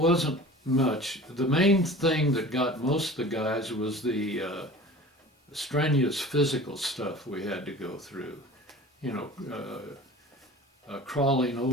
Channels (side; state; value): both; normal; correlation 0.40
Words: much. The main thing that got most of the guys was the strenuous physical stuff we had to go through. Crawling